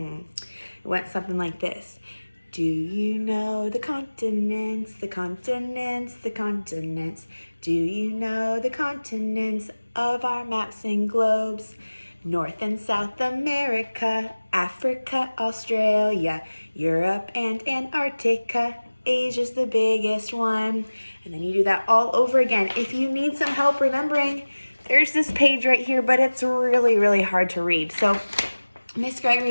went something like this. Do you know the continents, the continents, the continents? Do you know the continents of our maps and globes? North and South America, Africa, Australia, Europe and Antarctica. Asia's the biggest one. And then you do that all over again. If you need some help remembering, there's this page right here, but it's really, really hard to read. So Miss Gregory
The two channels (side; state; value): both; inverted; correlation -1.00